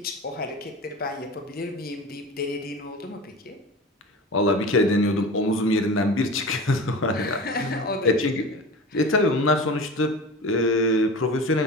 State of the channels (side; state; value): both; normal; correlation 0.33